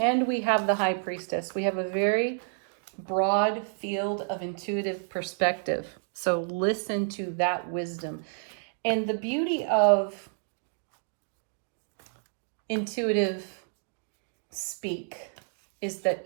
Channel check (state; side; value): silent; left; digital silence